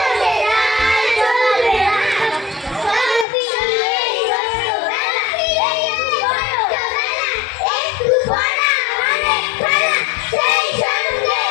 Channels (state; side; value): drops out; right; at 3.2 s